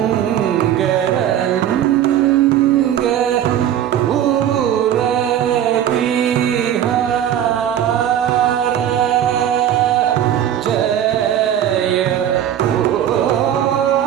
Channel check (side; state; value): left; quieter; 10.5 dB